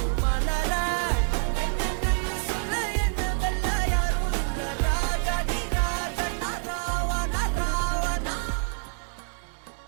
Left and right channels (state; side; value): silent; left; digital silence